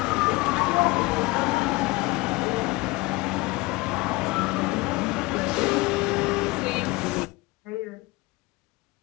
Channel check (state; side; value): quieter; right; 22.2 dB